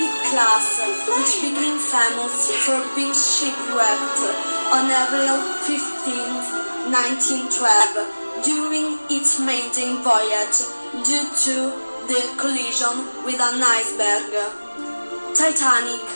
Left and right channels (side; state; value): both; inverted; correlation -1.00